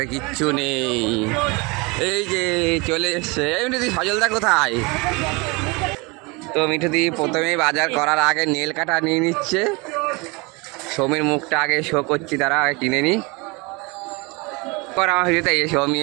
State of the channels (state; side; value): quieter; left; 27.4 dB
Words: কিচ্ছু নেই, এই যে চলে এসছে। এই মিঠুদি, সজলদা কোথায়? তো মিঠুদি প্রথমেই বাজার করার আগে নেল কাটা নিয়ে নিচ্ছে। সৌমির মুখটা আগে শো করছি, তারা আগে কিনে নি। পর আমার ভিডিওতে এই সৌমি